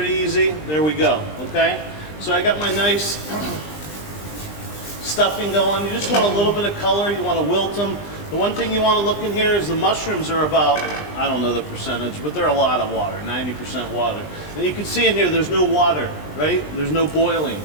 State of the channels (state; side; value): late; right; 20 ms